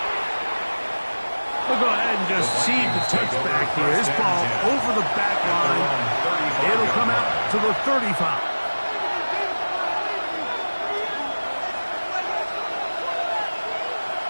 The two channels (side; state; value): both; inverted; correlation -1.00